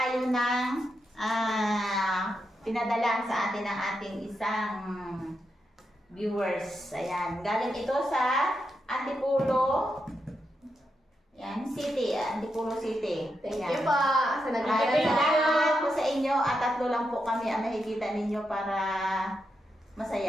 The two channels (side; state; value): both; normal; correlation 0.85